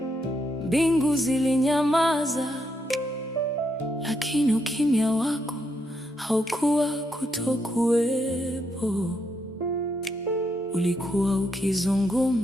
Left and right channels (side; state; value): both; normal; correlation 0.79